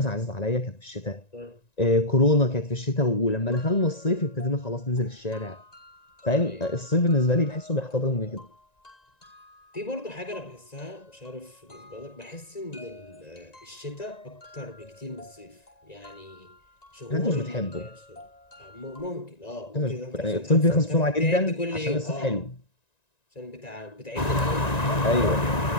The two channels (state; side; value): late; right; 1.9 ms